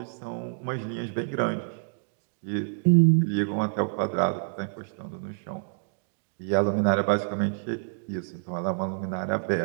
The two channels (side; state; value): left; silent; digital silence